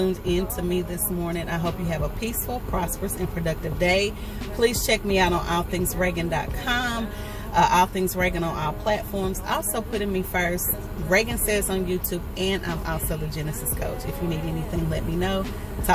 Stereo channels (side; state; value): both; identical; correlation 1.00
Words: in to me this morning. I hope you have a peaceful, prosperous, and productive day. Please check me out on allthingsregan.com. All Things Regan on all platforms. Also putting me first, Regan Says on YouTube, and I'm also the Genesis Coach. If you need anything, let me know.